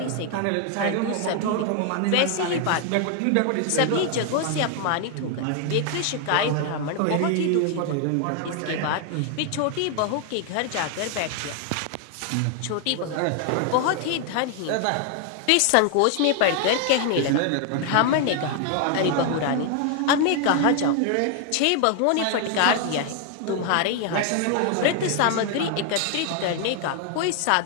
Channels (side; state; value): both; different; correlation 0.00